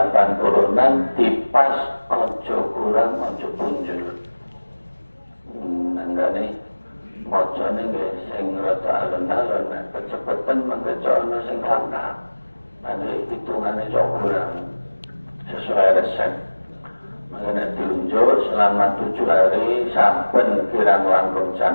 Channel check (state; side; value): inverted; both; correlation -1.00